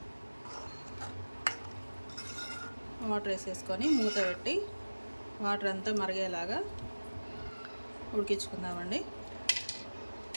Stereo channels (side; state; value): both; inverted; correlation -1.00